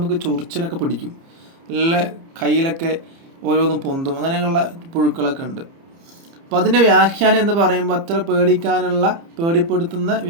ചൊറിച്ചിലൊക്കെ പിടിക്കും, നല്ല കയ്യിലൊക്കെ ഓരോന്നും പൊന്തും, അങ്ങനെയുള്ള പുഴുക്കളൊക്കെ ഉണ്ട്. അപ്പം അതിൻ്റെ വ്യാഖ്യാനം എന്ന് പറയുമ്പോൾ അത്ര പേടിക്കാനുള്ള, പേടിപ്പെടുത്തുന്ന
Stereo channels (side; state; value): left; late; 30 ms